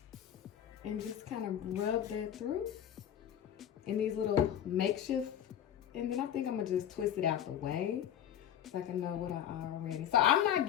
and just kind of rub that through in these little makeshift, and then I think I'm gonna just twist it out the way so I can know what I already. So I'm not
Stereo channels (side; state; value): right; quieter; 10.2 dB